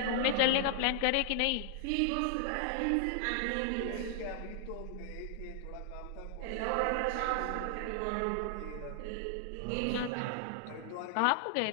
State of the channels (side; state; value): both; different; correlation 0.00